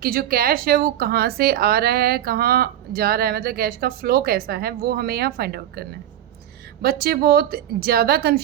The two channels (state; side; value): quieter; left; 11.7 dB